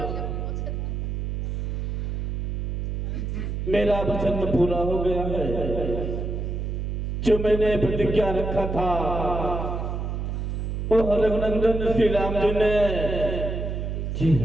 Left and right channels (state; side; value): noise; right; hum, 3 dB below the sound